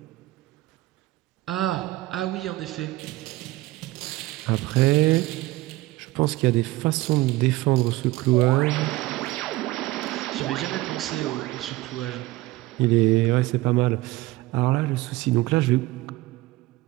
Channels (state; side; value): quieter; left; 18.6 dB